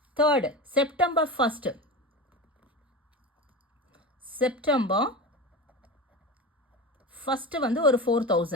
third, September 1st. September 1st வந்து ஒரு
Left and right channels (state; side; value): normal; both; correlation 0.26